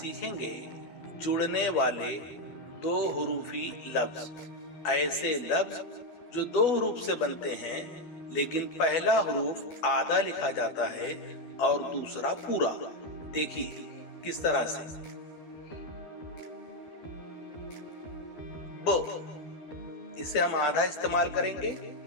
जुड़ने वाले दो हुरूफी लफ्ज। ऐसे लफ्ज जो दो हुरूफ से बनते हैं लेकिन पहला हुरूफ आधा लिखा जाता है और दूसरा पूरा। देखिए किस तरह से। ब, इसे हम आधा इस्तेमाल करेंगे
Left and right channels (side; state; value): right; late; 12 ms